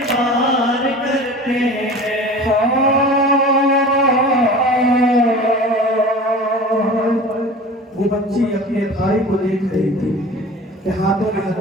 وار کرتے ہیں۔ وہ بچی اپنے بھائی کو دیکھ رہی تھی کہ ہاتھوں میں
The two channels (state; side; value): normal; both; correlation 0.38